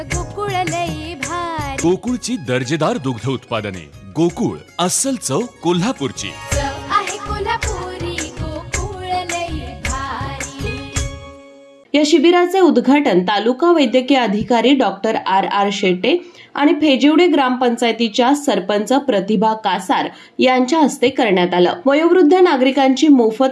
गोकुळ लई भारी। गोकुळची दर्जेदार दुग्ध उत्पादने गोकुळ अस्सल चव कोल्हापूरची आहे कोल्हापुरी गोकुळ लई भारी। या शिबिराचे उद्घाटन तालुका वैद्यकीय अधिकारी डॉक्टर आर शेटे आणि फेजिवडे ग्रामपंचायतीच्या सरपंच प्रतिभा कासार यांच्या हस्ते करण्यात आलं। वयोवृद्ध नागरिकांची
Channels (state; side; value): identical; both; correlation 1.00